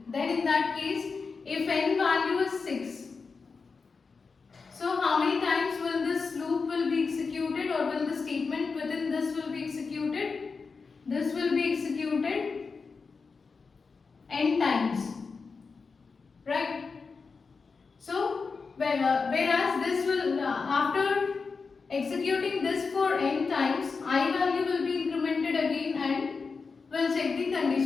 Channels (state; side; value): quieter; right; 4.8 dB